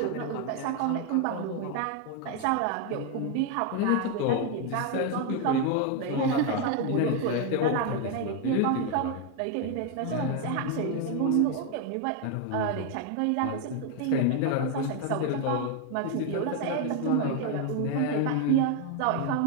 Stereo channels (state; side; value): different; both; correlation 0.01